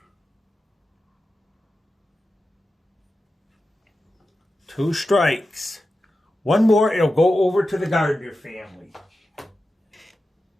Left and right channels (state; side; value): normal; both; correlation 0.92